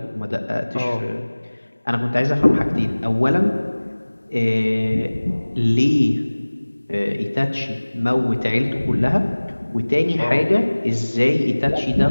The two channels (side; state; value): both; inverted; correlation -1.00